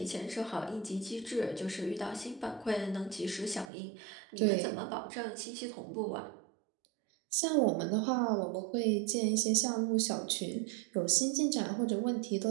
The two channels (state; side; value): drops out; left; at 3.7 s